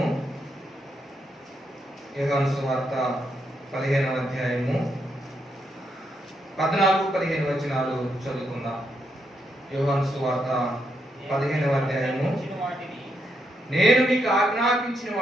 యోహాను సువార్త 15వ అధ్యాయము 14-15 వచనాలు చదువుకుందాం. యోహాను సువార్త 15వ అధ్యాయము. నేను మీకు ఆజ్ఞాపించిన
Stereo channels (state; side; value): normal; both; correlation 0.79